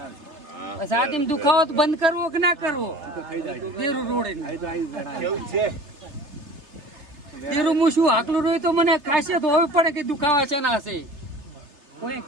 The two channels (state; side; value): late; left; 3.3 ms